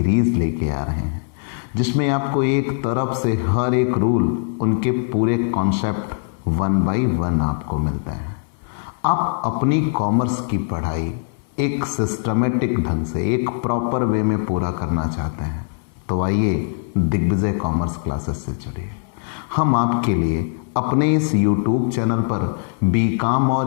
लेके आ रहे हैं, जिसमें आपको एक तरफ से हर एक रूल, उनके पूरे कॉन्सेप्ट 1 बाय 1 आपको मिलते हैं। आप अपनी कॉमर्स की पढ़ाई एक सिस्टमेटिक ढंग से, एक प्रॉपर वे में पूरा करना चाहते हैं तो आइए दिग्विजय कॉमर्स क्लासेस से जुड़िए। हम आपके लिए अपने इस YouTube चैनल पर बीकॉम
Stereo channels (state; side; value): silent; right; 65 dB below the other